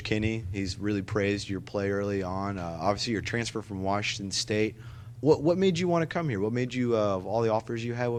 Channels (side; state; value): both; identical; correlation 1.00